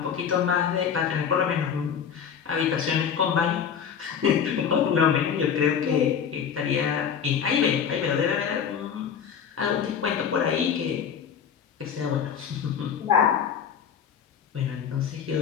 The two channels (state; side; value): quieter; right; 7.6 dB